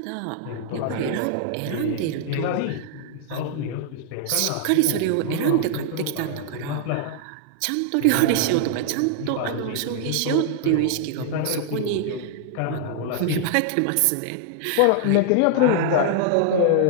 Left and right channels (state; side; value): different; both; correlation -0.01